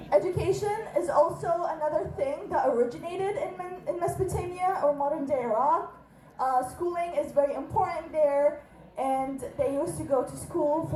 Education is also another thing that originated in Mesopotamia or modern day Iraq. Schooling is very important there, and they used to go to school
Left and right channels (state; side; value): identical; both; correlation 1.00